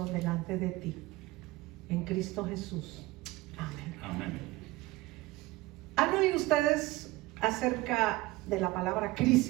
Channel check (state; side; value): quieter; left; 19.7 dB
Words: delante de ti. En Cristo Jesús. Amén. Amén. ¿Han oído ustedes acerca de la palabra